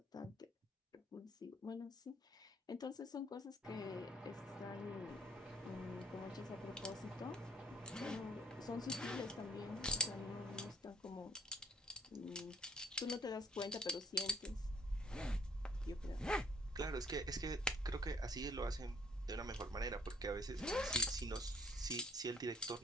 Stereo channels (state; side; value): normal; both; correlation 0.58